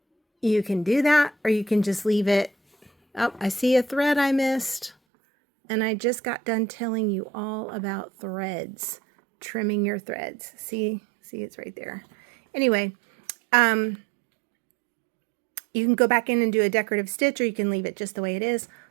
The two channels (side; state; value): left; drops out; at 5.0 s